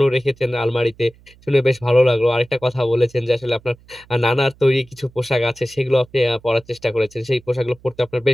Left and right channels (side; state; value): right; noise; hum, 27 dB below the sound